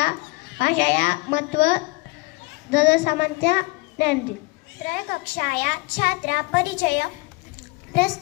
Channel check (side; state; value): right; quieter; 24.4 dB